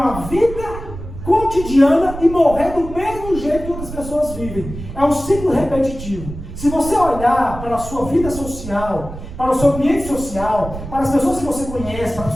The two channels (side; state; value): right; noise; rumble, 10 dB below the sound